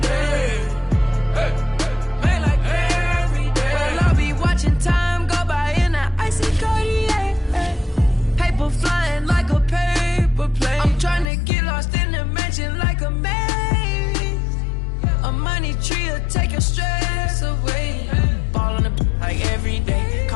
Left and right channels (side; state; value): right; drops out; at 11.3 s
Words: day. Man, like every day.